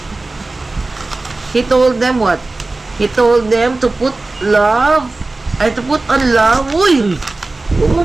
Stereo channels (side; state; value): left; quieter; 3.2 dB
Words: He told them what? He told them to put on love. Uy!